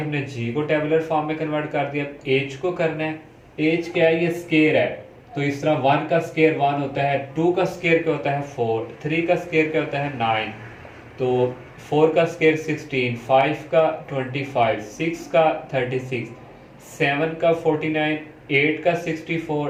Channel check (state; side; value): identical; both; correlation 1.00